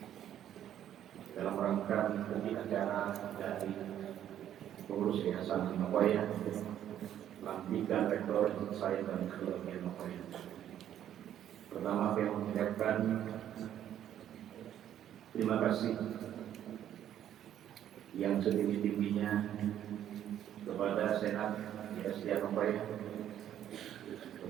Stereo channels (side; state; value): left; quieter; 10.8 dB